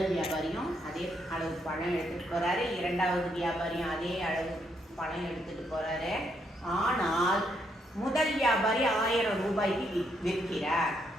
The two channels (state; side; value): normal; both; correlation 0.75